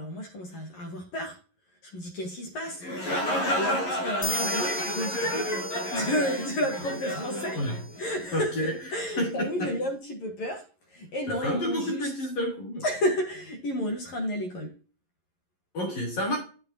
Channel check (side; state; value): right; late; 11 ms